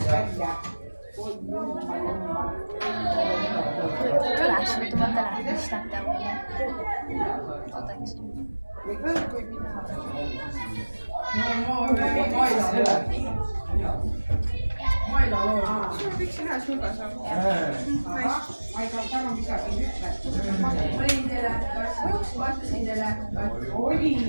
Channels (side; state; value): both; inverted; correlation -1.00